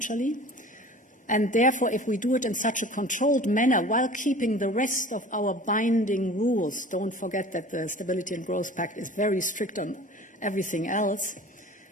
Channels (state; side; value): normal; both; correlation 0.42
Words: And therefore, if we do it in such a controlled manner while keeping the rest of our binding rules, don't forget that the Stability and Growth Pact is very strict on everything else,